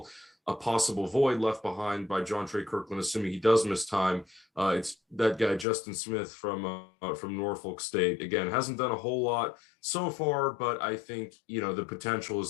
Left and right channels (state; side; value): drops out; right; at 5.7 s